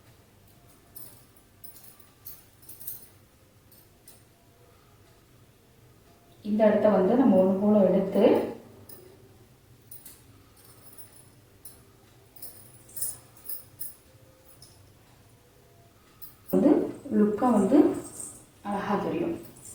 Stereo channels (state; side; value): identical; both; correlation 1.00